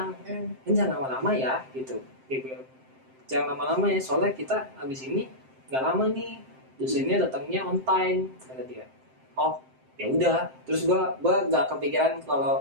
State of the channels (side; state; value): left; late; 7.7 ms